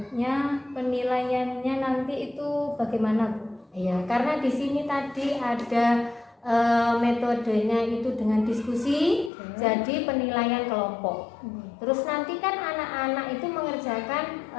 penilaiannya nanti itu bagaimana, Bu? Iya, karena di sini tadi ada metodenya itu dengan diskusi, jadi penilaian kelompok. Terus nanti kan anak-anak itu mengerjakan,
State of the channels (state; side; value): drops out; right; at 9.3 s